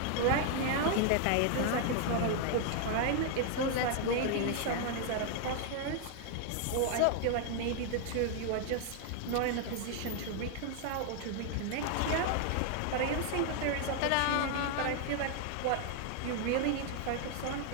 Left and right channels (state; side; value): different; both; correlation 0.00